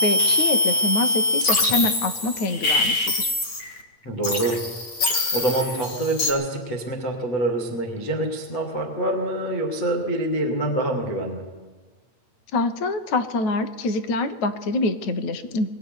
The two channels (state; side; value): late; right; 8.7 ms